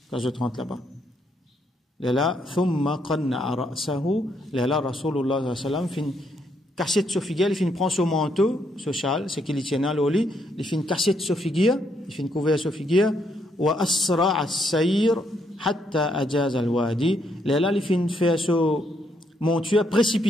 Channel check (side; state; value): both; normal; correlation 0.74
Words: quand je te rentre là-bas. Là, thumma qanna'a ra'sahu, là, Rasulullah sallallahu alayhi wa sallam, fin casser de figure, il fin prend son manteau, ce châle, c'est qu'il tient à l'oli, il fin casser de figure, il fin couvrir sa figure, wa asra as-sayr hatta ajaz al-wadi, là, il fin faire son monture